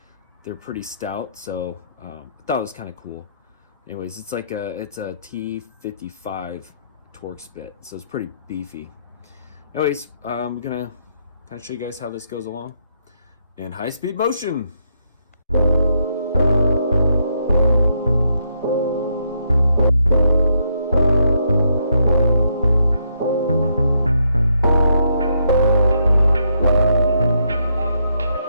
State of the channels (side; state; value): both; inverted; correlation -0.76